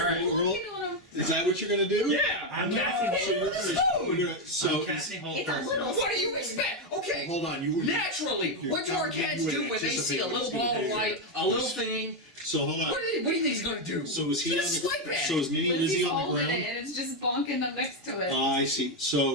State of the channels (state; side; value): normal; both; correlation 0.05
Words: right, a roll. looking on him. Is that what you're going to do? Yeah. I'm No. casting So you're hold. gonna, so I'm casting hold It's a first. little. What do you expect? Okay. hold on. You Naturally, You're what do our telling me cats you do would when they see a anticipate little what's gonna ball of do light, here. a little thing? So hold on. What do you think he's gonna do? So is he on Just the swipe at So is Mini Lizzy Lizzy's on the holding ground? it and it's just bonking up next to it. I see. So